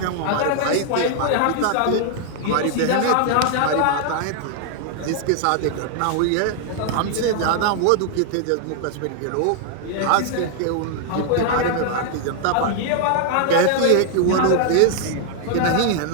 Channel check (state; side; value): different; both; correlation 0.00